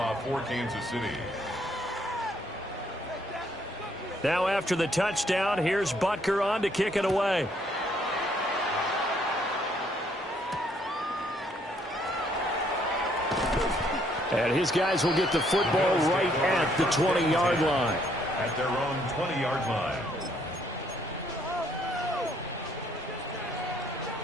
for Kansas City. Now after the touchdown, here's Butker on to kick it away. And his guys will get the football right at the 20-yard line. at their own 20-yard line.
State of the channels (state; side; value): normal; both; correlation 0.68